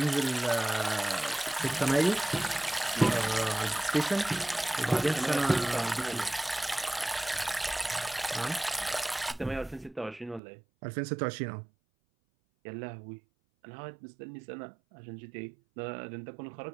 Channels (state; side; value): drops out; left; at 10.4 s